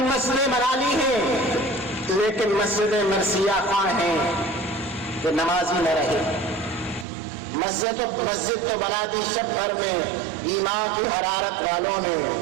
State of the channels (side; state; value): left; drops out; at 7.1 s